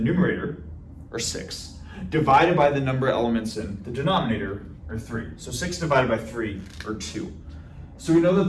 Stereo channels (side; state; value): both; identical; correlation 1.00